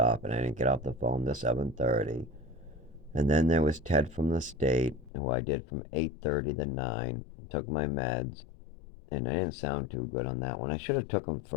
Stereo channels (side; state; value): right; drops out; at 5.1 s